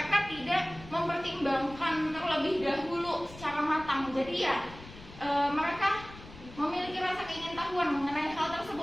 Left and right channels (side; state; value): left; noise; rumble, 17 dB below the sound